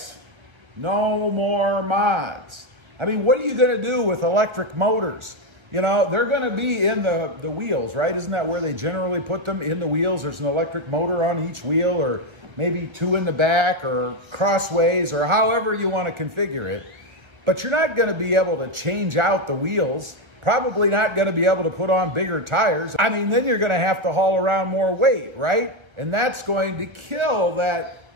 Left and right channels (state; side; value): late; left; 1.2 ms